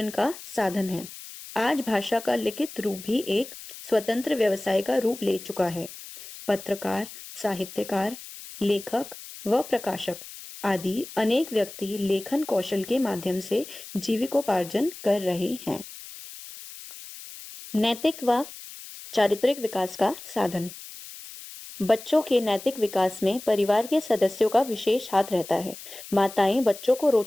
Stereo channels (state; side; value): noise; left; hiss, 14 dB below the sound